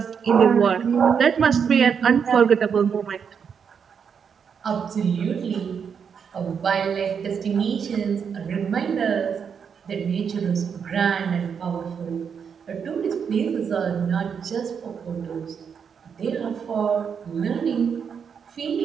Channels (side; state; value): left; quieter; 6.9 dB